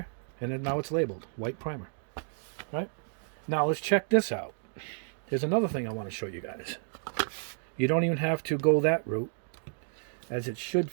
and then now it's labeled white primer. Right? Now let's check this out. Here's another thing I want to show you guys. You don't even have to go that route, as it should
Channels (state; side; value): silent; left; 57 dB below the other